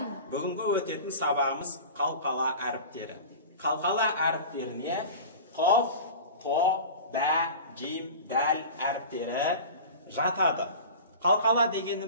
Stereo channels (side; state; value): both; inverted; correlation -0.35